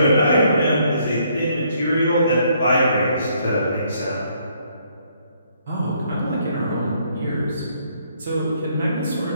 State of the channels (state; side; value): inverted; both; correlation -0.68